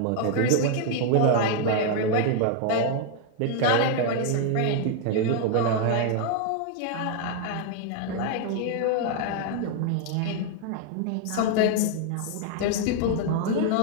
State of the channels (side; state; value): both; different; correlation 0.00